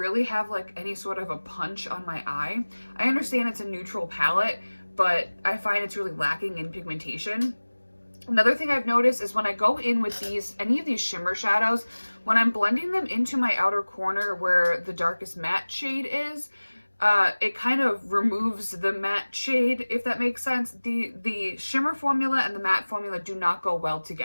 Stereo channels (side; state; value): both; inverted; correlation -1.00